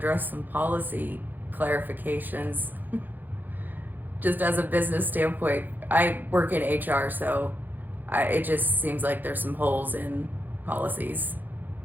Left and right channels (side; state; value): left; late; 0.087 ms